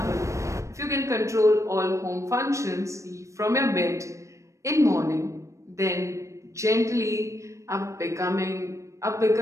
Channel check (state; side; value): late; left; 0.15 ms